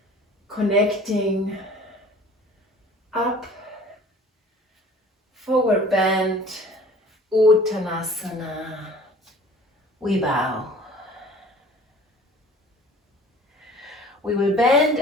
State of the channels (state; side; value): normal; both; correlation 0.48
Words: connecting up, forward bend, Uttanasana. We bow. We will bend